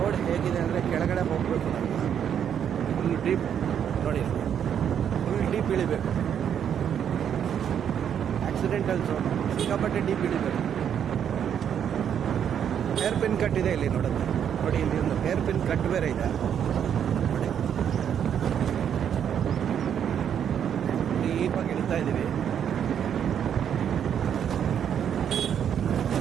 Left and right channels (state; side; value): quieter; left; 8.7 dB